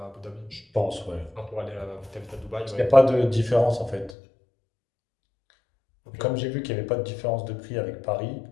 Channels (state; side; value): drops out; right; at 4.2 s